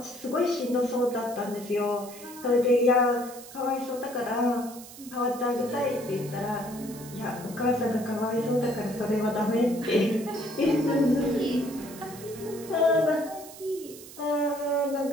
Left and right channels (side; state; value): right; noise; hiss, 16 dB below the sound